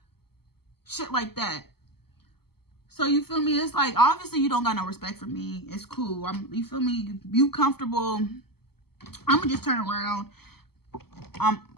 shit like that. So, you feel me? It's like, obviously, you don't got no respect for me. It's cool. You feel me? You comfortable. I'm going to just turn around.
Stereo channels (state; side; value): late; right; 0.96 ms